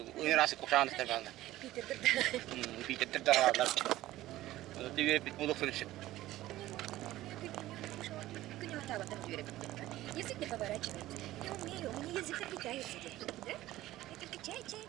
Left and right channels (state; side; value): quieter; left; 15.7 dB